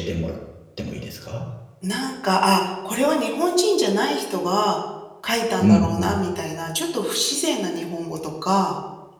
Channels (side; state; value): both; identical; correlation 1.00